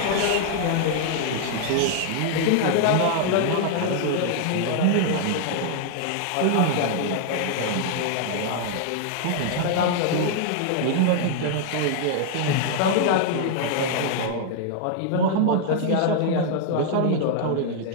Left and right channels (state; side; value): different; both; correlation 0.00